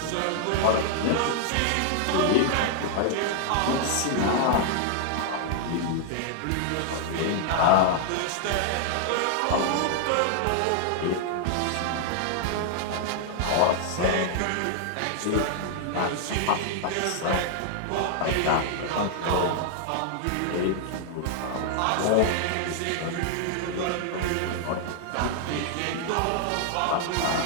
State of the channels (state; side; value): different; both; correlation 0.00